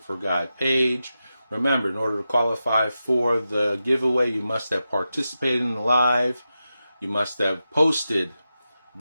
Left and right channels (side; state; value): both; inverted; correlation -0.91